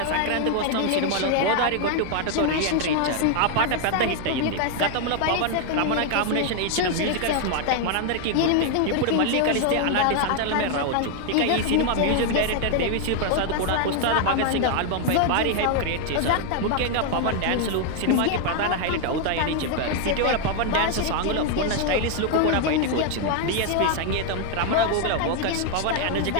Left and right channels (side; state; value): both; different; correlation 0.00